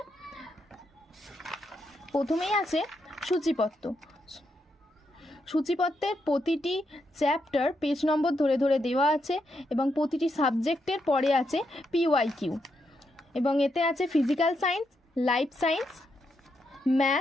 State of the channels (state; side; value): normal; both; correlation 0.81